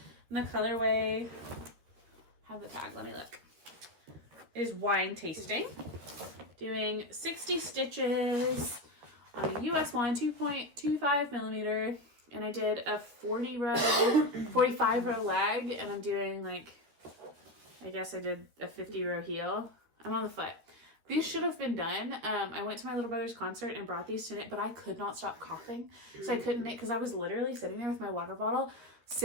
And the colorway, have the tag, let me look. It is Wine Tasting. Doing 60 stitches on a US 1 2.25 millimeter. And I did a 45 row leg, and I'm doing like, I guess I did a 50 row heel. I'm on the foot. These should have been done. I went to my little brother's concert and brought these to knit, but I could not stop coughing. So I couldn't knit because I was literally sitting there with my water bottle,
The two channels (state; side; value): late; left; 13 ms